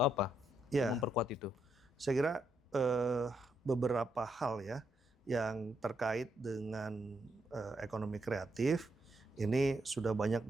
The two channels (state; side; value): normal; both; correlation 0.78